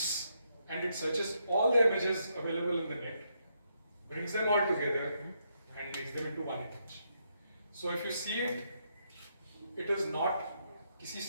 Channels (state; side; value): inverted; both; correlation -0.78